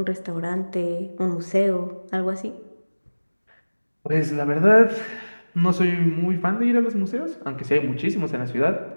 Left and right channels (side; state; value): both; inverted; correlation -1.00